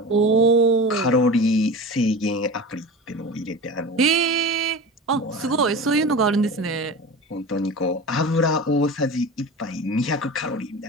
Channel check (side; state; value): both; normal; correlation 0.32